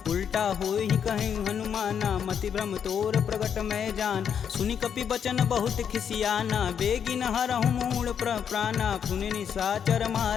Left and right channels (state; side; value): quieter; right; 7.9 dB